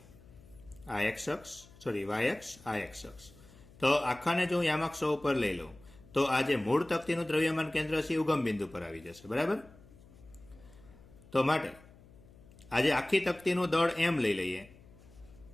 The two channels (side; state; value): left; noise; hum, 23 dB below the sound